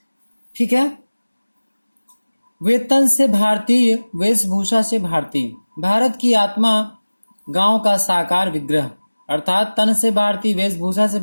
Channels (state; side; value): inverted; both; correlation -1.00